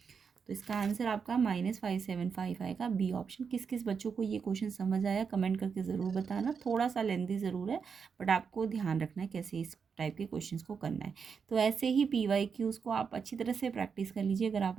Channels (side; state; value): left; quieter; 6.1 dB